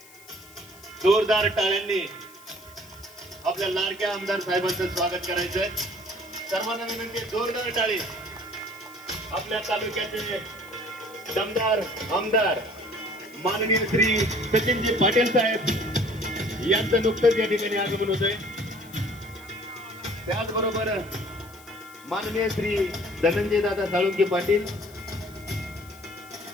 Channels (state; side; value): noise; left; hiss, 22 dB below the sound